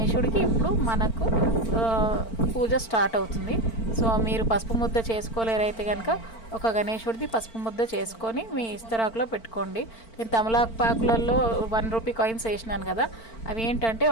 ఇప్పుడు మనకు పూజ స్టార్ట్ అవుతుంది. సో మీరు పసుపు ముద్ద చేసుకోలేరైతే కనుక ఒక గణేశుడిది పసుపు ముద్ద చేసుకొని మీ ఇస్తరాకులో పెట్టుకోండి. నేను తమలపాకులలో 1 రూపీ కాయిన్స్ వేసినాను కదా, అవి ఏంటంటే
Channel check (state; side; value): late; right; 4.4 ms